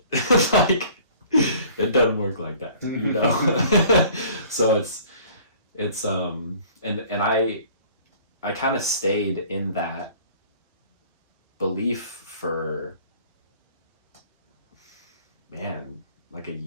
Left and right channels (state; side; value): inverted; both; correlation -0.51